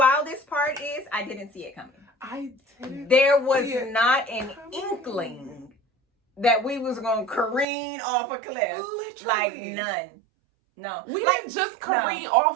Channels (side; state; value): left; drops out; at 7.7 s